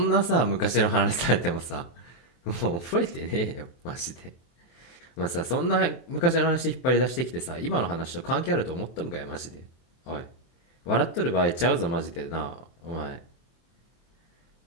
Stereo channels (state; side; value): late; right; 24 ms